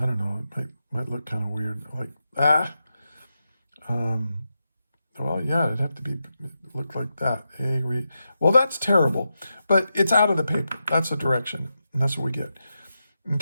don't know, it might look kind of weird, like, Well, yeah, it'd have to be look like that. Well, that's terrible, but it's out of the paper. That's a direction, and that's what we get.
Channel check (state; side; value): inverted; both; correlation -0.88